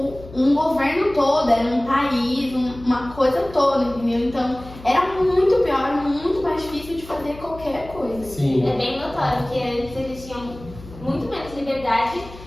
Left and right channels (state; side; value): noise; left; hum, 17 dB below the sound